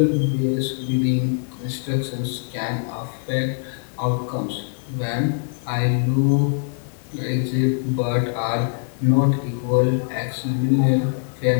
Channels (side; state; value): right; silent; 64 dB below the other